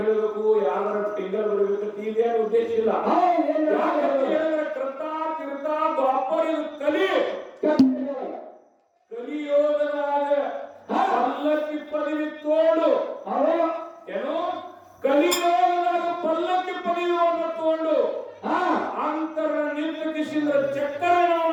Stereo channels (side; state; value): both; identical; correlation 1.00